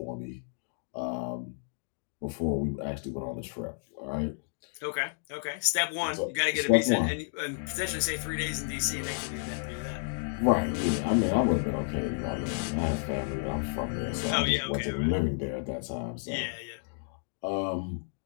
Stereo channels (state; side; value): silent; right; digital silence